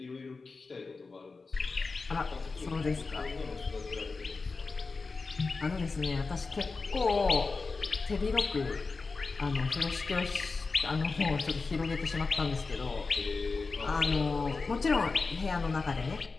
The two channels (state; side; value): quieter; right; 4.1 dB